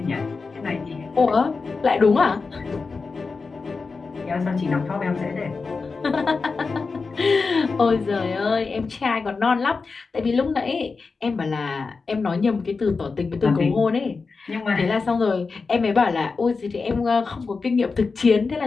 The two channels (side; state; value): right; quieter; 4.5 dB